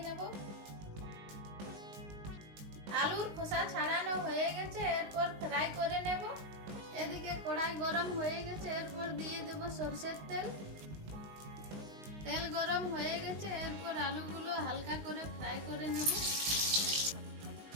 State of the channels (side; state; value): left; late; 19 ms